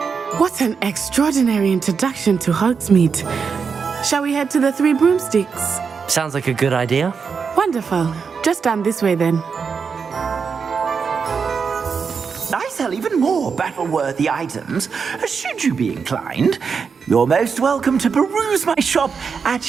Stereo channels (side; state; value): left; quieter; 5.8 dB